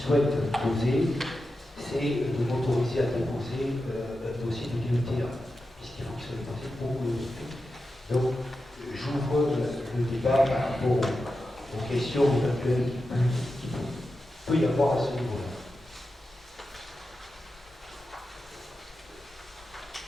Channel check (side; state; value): both; normal; correlation 0.90